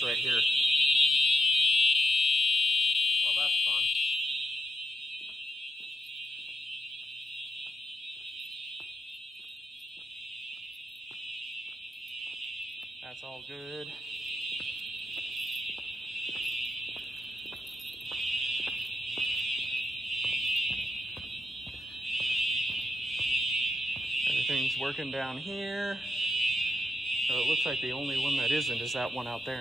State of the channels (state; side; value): normal; both; correlation 0.84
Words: right here. Well, that's fun. That's all good. Everything's working down here. So it looks like the only one that isn't is that one out there,